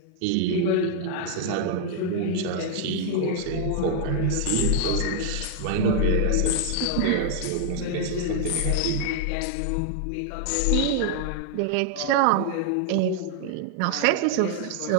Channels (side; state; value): both; different; correlation 0.00